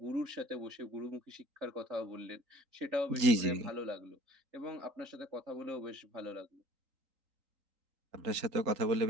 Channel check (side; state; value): left; late; 3.8 ms